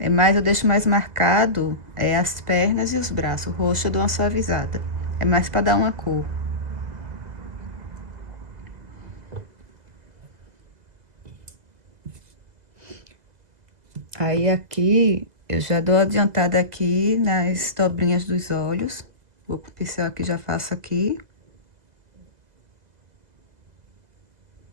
mais, eu deixo mais marcado as pernas e os braços. O rosto eu dou uma suavizada. É mais pra dar uma cor. Aí aqui, eu já dou adiantada aqui nas dobrinhas dos olhos. Vou com o pincel aqui, já faço aqui.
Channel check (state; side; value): late; left; 2.0 ms